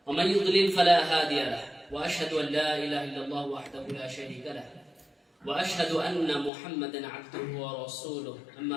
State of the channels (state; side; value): drops out; right; at 6.5 s